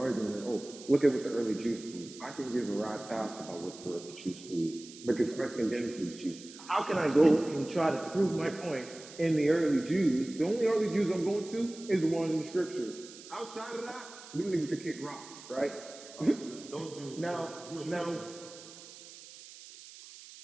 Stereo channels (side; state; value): right; noise; hiss, 17 dB below the sound